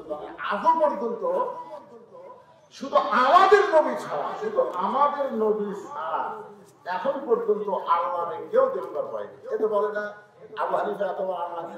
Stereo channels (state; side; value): identical; both; correlation 1.00